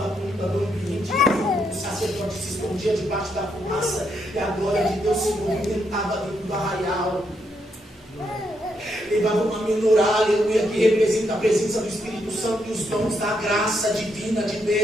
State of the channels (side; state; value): both; normal; correlation 0.78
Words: conta do ambiente. O sacerdote se escondia debaixo da fumaça e a glória de Deus se movimentava dentro do arraial. Levavam uma menorá, aleluia, que representa a presença do Espírito Santo e os dons da graça divina de